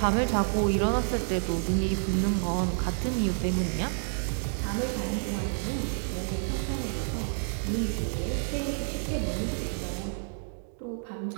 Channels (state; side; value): silent; left; digital silence